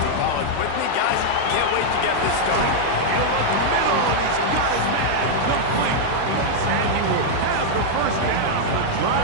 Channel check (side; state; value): both; different; correlation -0.01